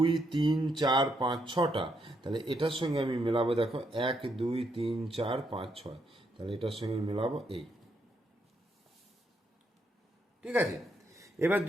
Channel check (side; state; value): both; normal; correlation 0.77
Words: 3 4 5 6টা, তাহলে এটার সঙ্গে আমি মেলাবো। দেখো 1 2 3 4 5 6, তাহলে এটার সঙ্গে মেলাবো এই। ঠিক আছে, এবার